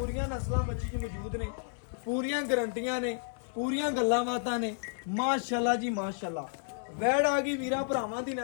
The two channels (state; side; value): silent; right; 57 dB below the other